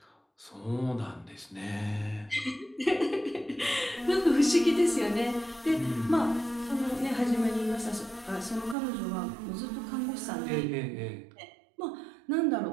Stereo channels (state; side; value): drops out; left; at 8.8 s